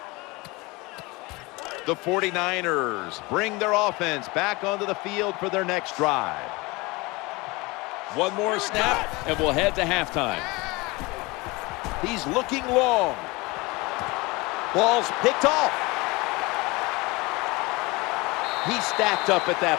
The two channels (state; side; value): quieter; right; 24.2 dB